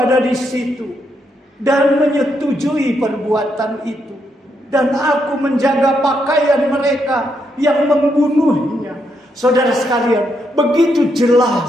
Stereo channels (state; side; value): normal; both; correlation 0.78